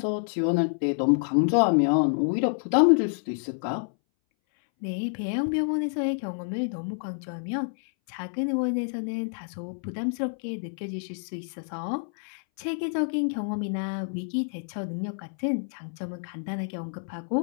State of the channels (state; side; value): silent; right; 59 dB below the other